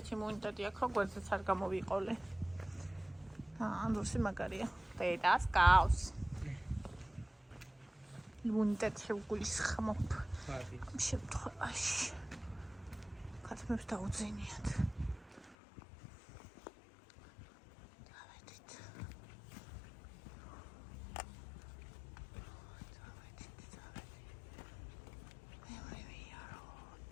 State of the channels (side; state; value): right; drops out; at 15.6 s